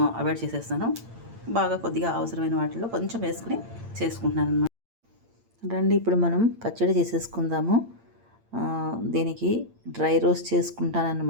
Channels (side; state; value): left; late; 8.7 ms